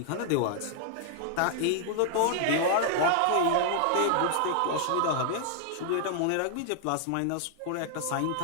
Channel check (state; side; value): different; both; correlation -0.01